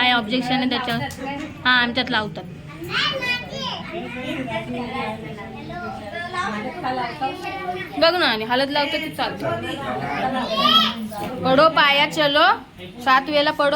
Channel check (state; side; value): identical; both; correlation 1.00